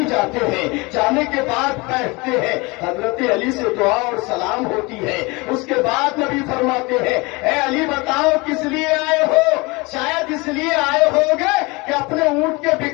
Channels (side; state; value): right; quieter; 25.5 dB